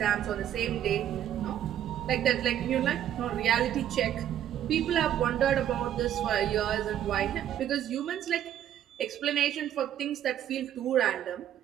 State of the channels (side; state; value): left; quieter; 10.9 dB